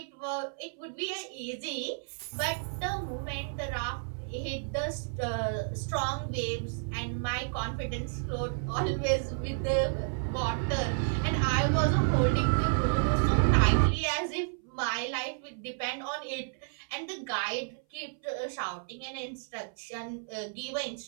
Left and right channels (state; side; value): silent; left; 57 dB below the other